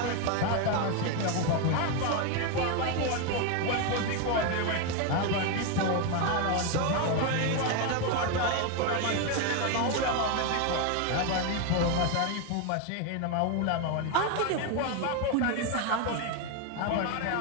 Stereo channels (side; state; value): both; different; correlation 0.02